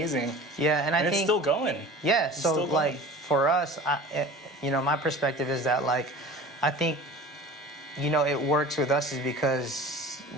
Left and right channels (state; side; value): normal; both; correlation 0.39